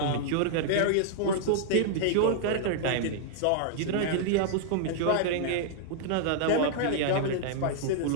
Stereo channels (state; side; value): different; both; correlation -0.01